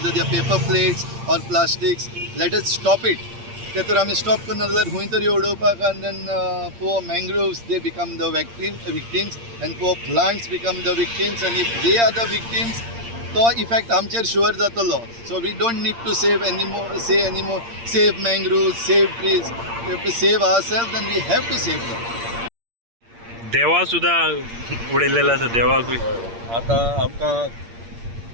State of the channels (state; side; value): late; left; 8.7 ms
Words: they paper plates or plastics let us stop it. ते तर आमी stop करना जाल्यार खंय तरी उडोवपाक आनी then poor mangroves they become the victims and poor plants become the victims and if they are the victims तो इफेक्ट आमचेर शुअर जातलो. So we don't need to save anymore save mangroves save trees we have to save ourselves and we have to save them. देवा सुद्धा उडयलेलो आसा देवाकूय. आतां आमकां